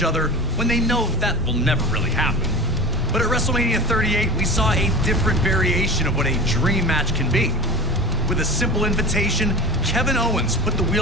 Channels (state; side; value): normal; both; correlation 0.32